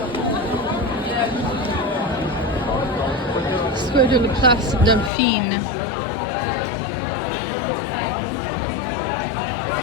Square de la Place Dauphine.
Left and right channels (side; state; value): right; drops out; at 5.1 s